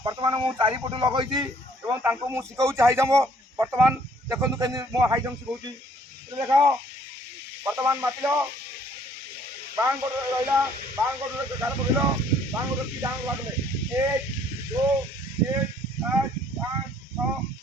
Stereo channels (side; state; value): both; normal; correlation 0.61